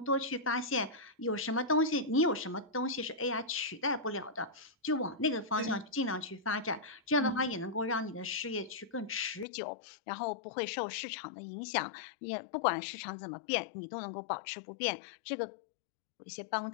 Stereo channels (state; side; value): drops out; right; at 9.5 s